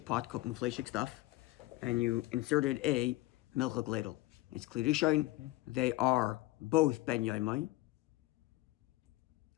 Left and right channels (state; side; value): quieter; right; 19.1 dB